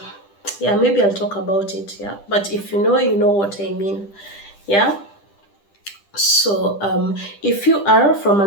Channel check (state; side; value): late; right; 10 ms